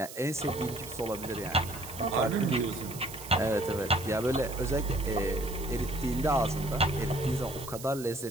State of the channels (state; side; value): noise; right; hiss, 13 dB below the sound